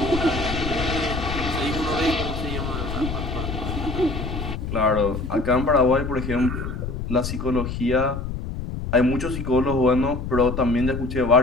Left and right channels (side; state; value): left; noise; rumble, 5 dB below the sound